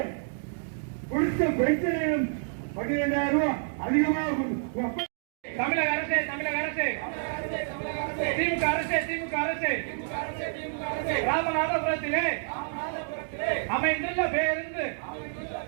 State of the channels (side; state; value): left; silent; digital silence